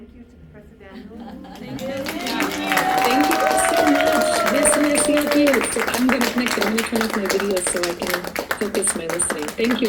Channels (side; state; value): both; identical; correlation 1.00